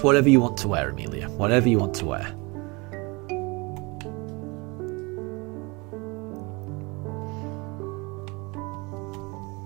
whatever you want to wear, Amelia. Whatever you want to wear.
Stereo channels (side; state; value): left; quieter; 27.1 dB